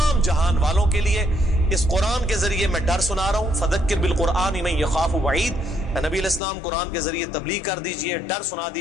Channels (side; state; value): right; drops out; at 6.4 s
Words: جہان والوں کے لیے. اس قرآن کے ذریعے میں ڈر سنا رہا ہوں. فذکر بالقرآن من یخاف وعید, نبی علیہ السلام قرآن کے ذریعے تبلیغ کر دیجئے, ڈر سنا